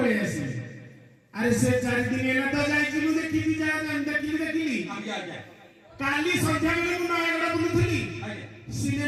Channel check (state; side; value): identical; both; correlation 1.00